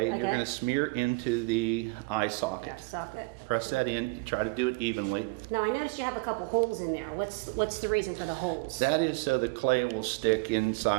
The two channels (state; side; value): quieter; left; 26.1 dB